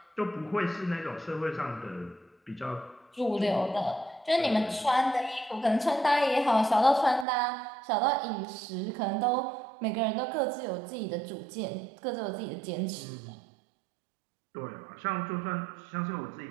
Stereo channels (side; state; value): left; drops out; at 7.2 s